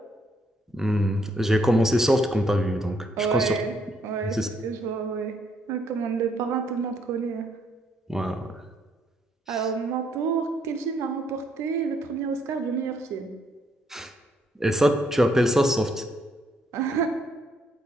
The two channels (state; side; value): normal; both; correlation 0.71